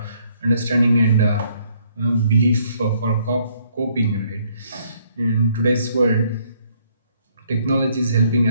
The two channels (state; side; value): inverted; both; correlation -0.66